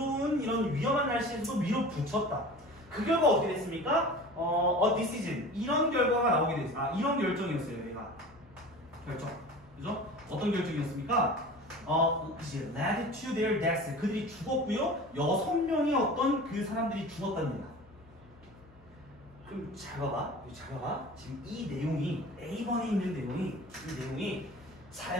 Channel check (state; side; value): noise; left; hum, 26 dB below the sound